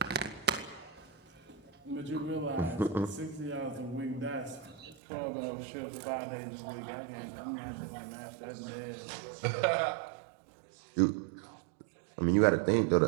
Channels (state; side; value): drops out; left; at 5.0 s